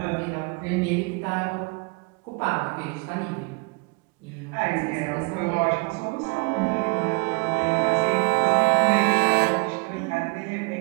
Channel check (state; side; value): quieter; left; 30.4 dB